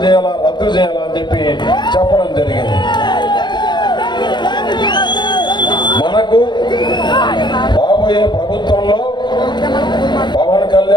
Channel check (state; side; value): late; right; 0.21 ms